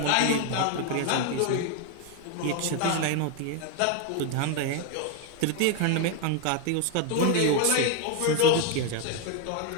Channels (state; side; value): different; both; correlation 0.01